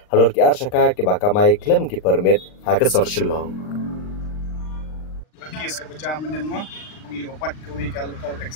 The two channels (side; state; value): right; late; 39 ms